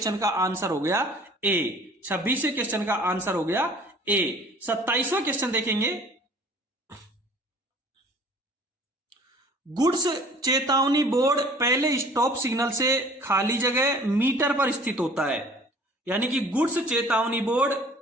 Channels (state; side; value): normal; both; correlation 0.50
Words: का आंसर हो गया ए। 26वें क्वेश्चन का आंसर हो गया ए। 27वां क्वेश्चन देखेंगे। गुड्स चेतावनी बोर्ड पहले स्टॉप सिग्नल से खाली जगह मीटर पर स्थित होता है। यानी कि गुड्स चेतावनी बोर्ड